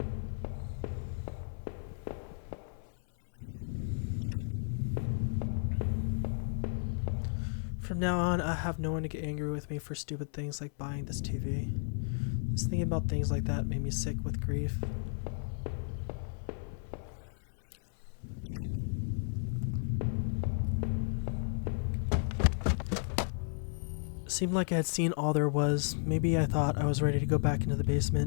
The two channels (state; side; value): silent; right; 55 dB below the other